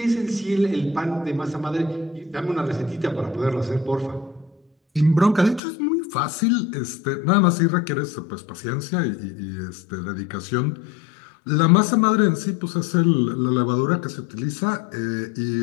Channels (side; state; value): right; drops out; at 5.6 s